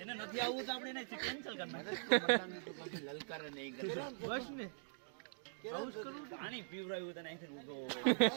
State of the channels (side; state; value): left; silent; digital silence